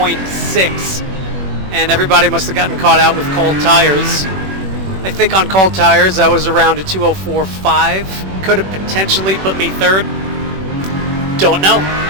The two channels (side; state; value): left; late; 21 ms